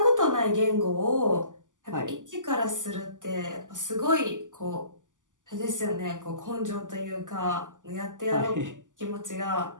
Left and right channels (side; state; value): left; late; 0.87 ms